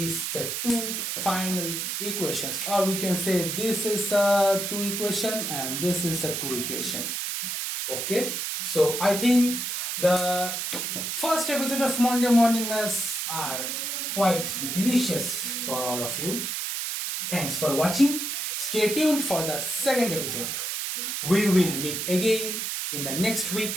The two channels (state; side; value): noise; right; hiss, 2 dB below the sound